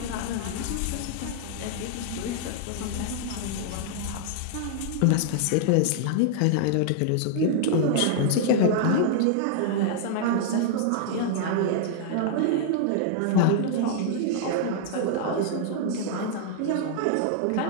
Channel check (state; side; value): different; both; correlation -0.01